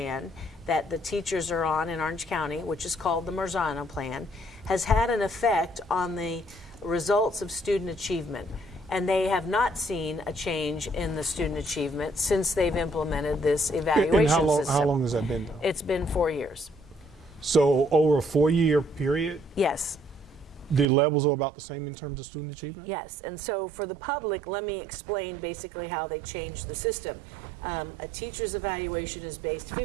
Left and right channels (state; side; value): drops out; left; at 20.9 s